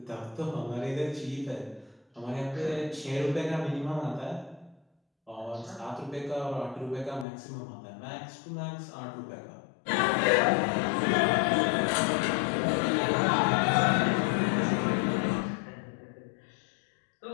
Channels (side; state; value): right; drops out; at 7.2 s